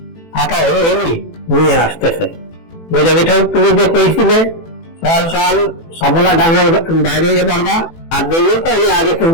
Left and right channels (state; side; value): late; right; 18 ms